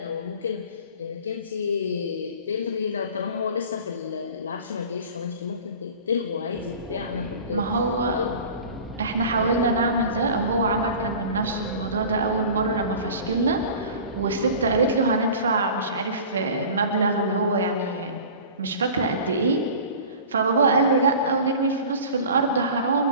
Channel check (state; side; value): inverted; both; correlation -0.40